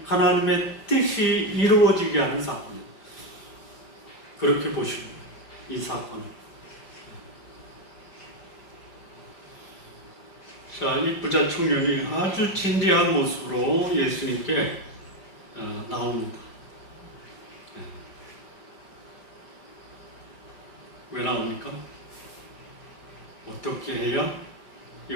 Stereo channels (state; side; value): late; right; 5.0 ms